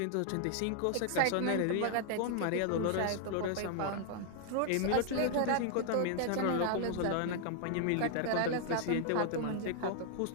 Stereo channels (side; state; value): both; different; correlation 0.00